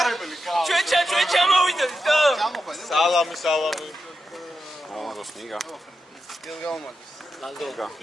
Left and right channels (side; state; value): both; normal; correlation 0.88